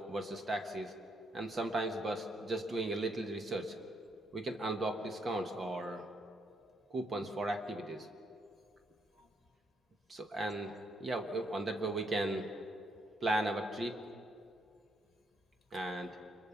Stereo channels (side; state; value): both; normal; correlation 0.75